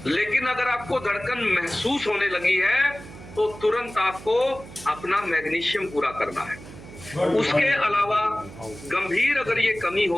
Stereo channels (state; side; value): noise; right; hum, 16 dB below the sound